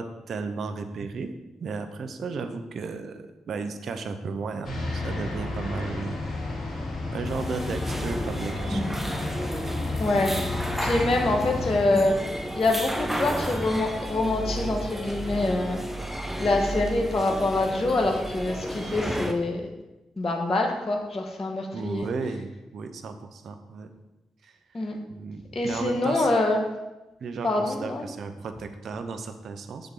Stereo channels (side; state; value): both; normal; correlation 0.84